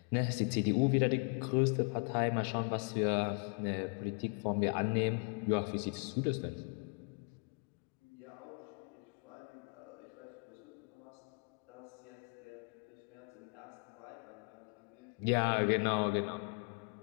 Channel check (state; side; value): quieter; right; 37.4 dB